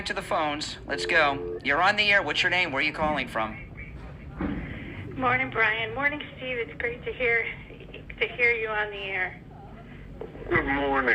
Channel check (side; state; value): both; identical; correlation 1.00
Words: to the phones. Let's go. You're on the air. What's your name? Where are you calling from? Morning, Brian. Morning, Steve. It's great to hear you on the air. Good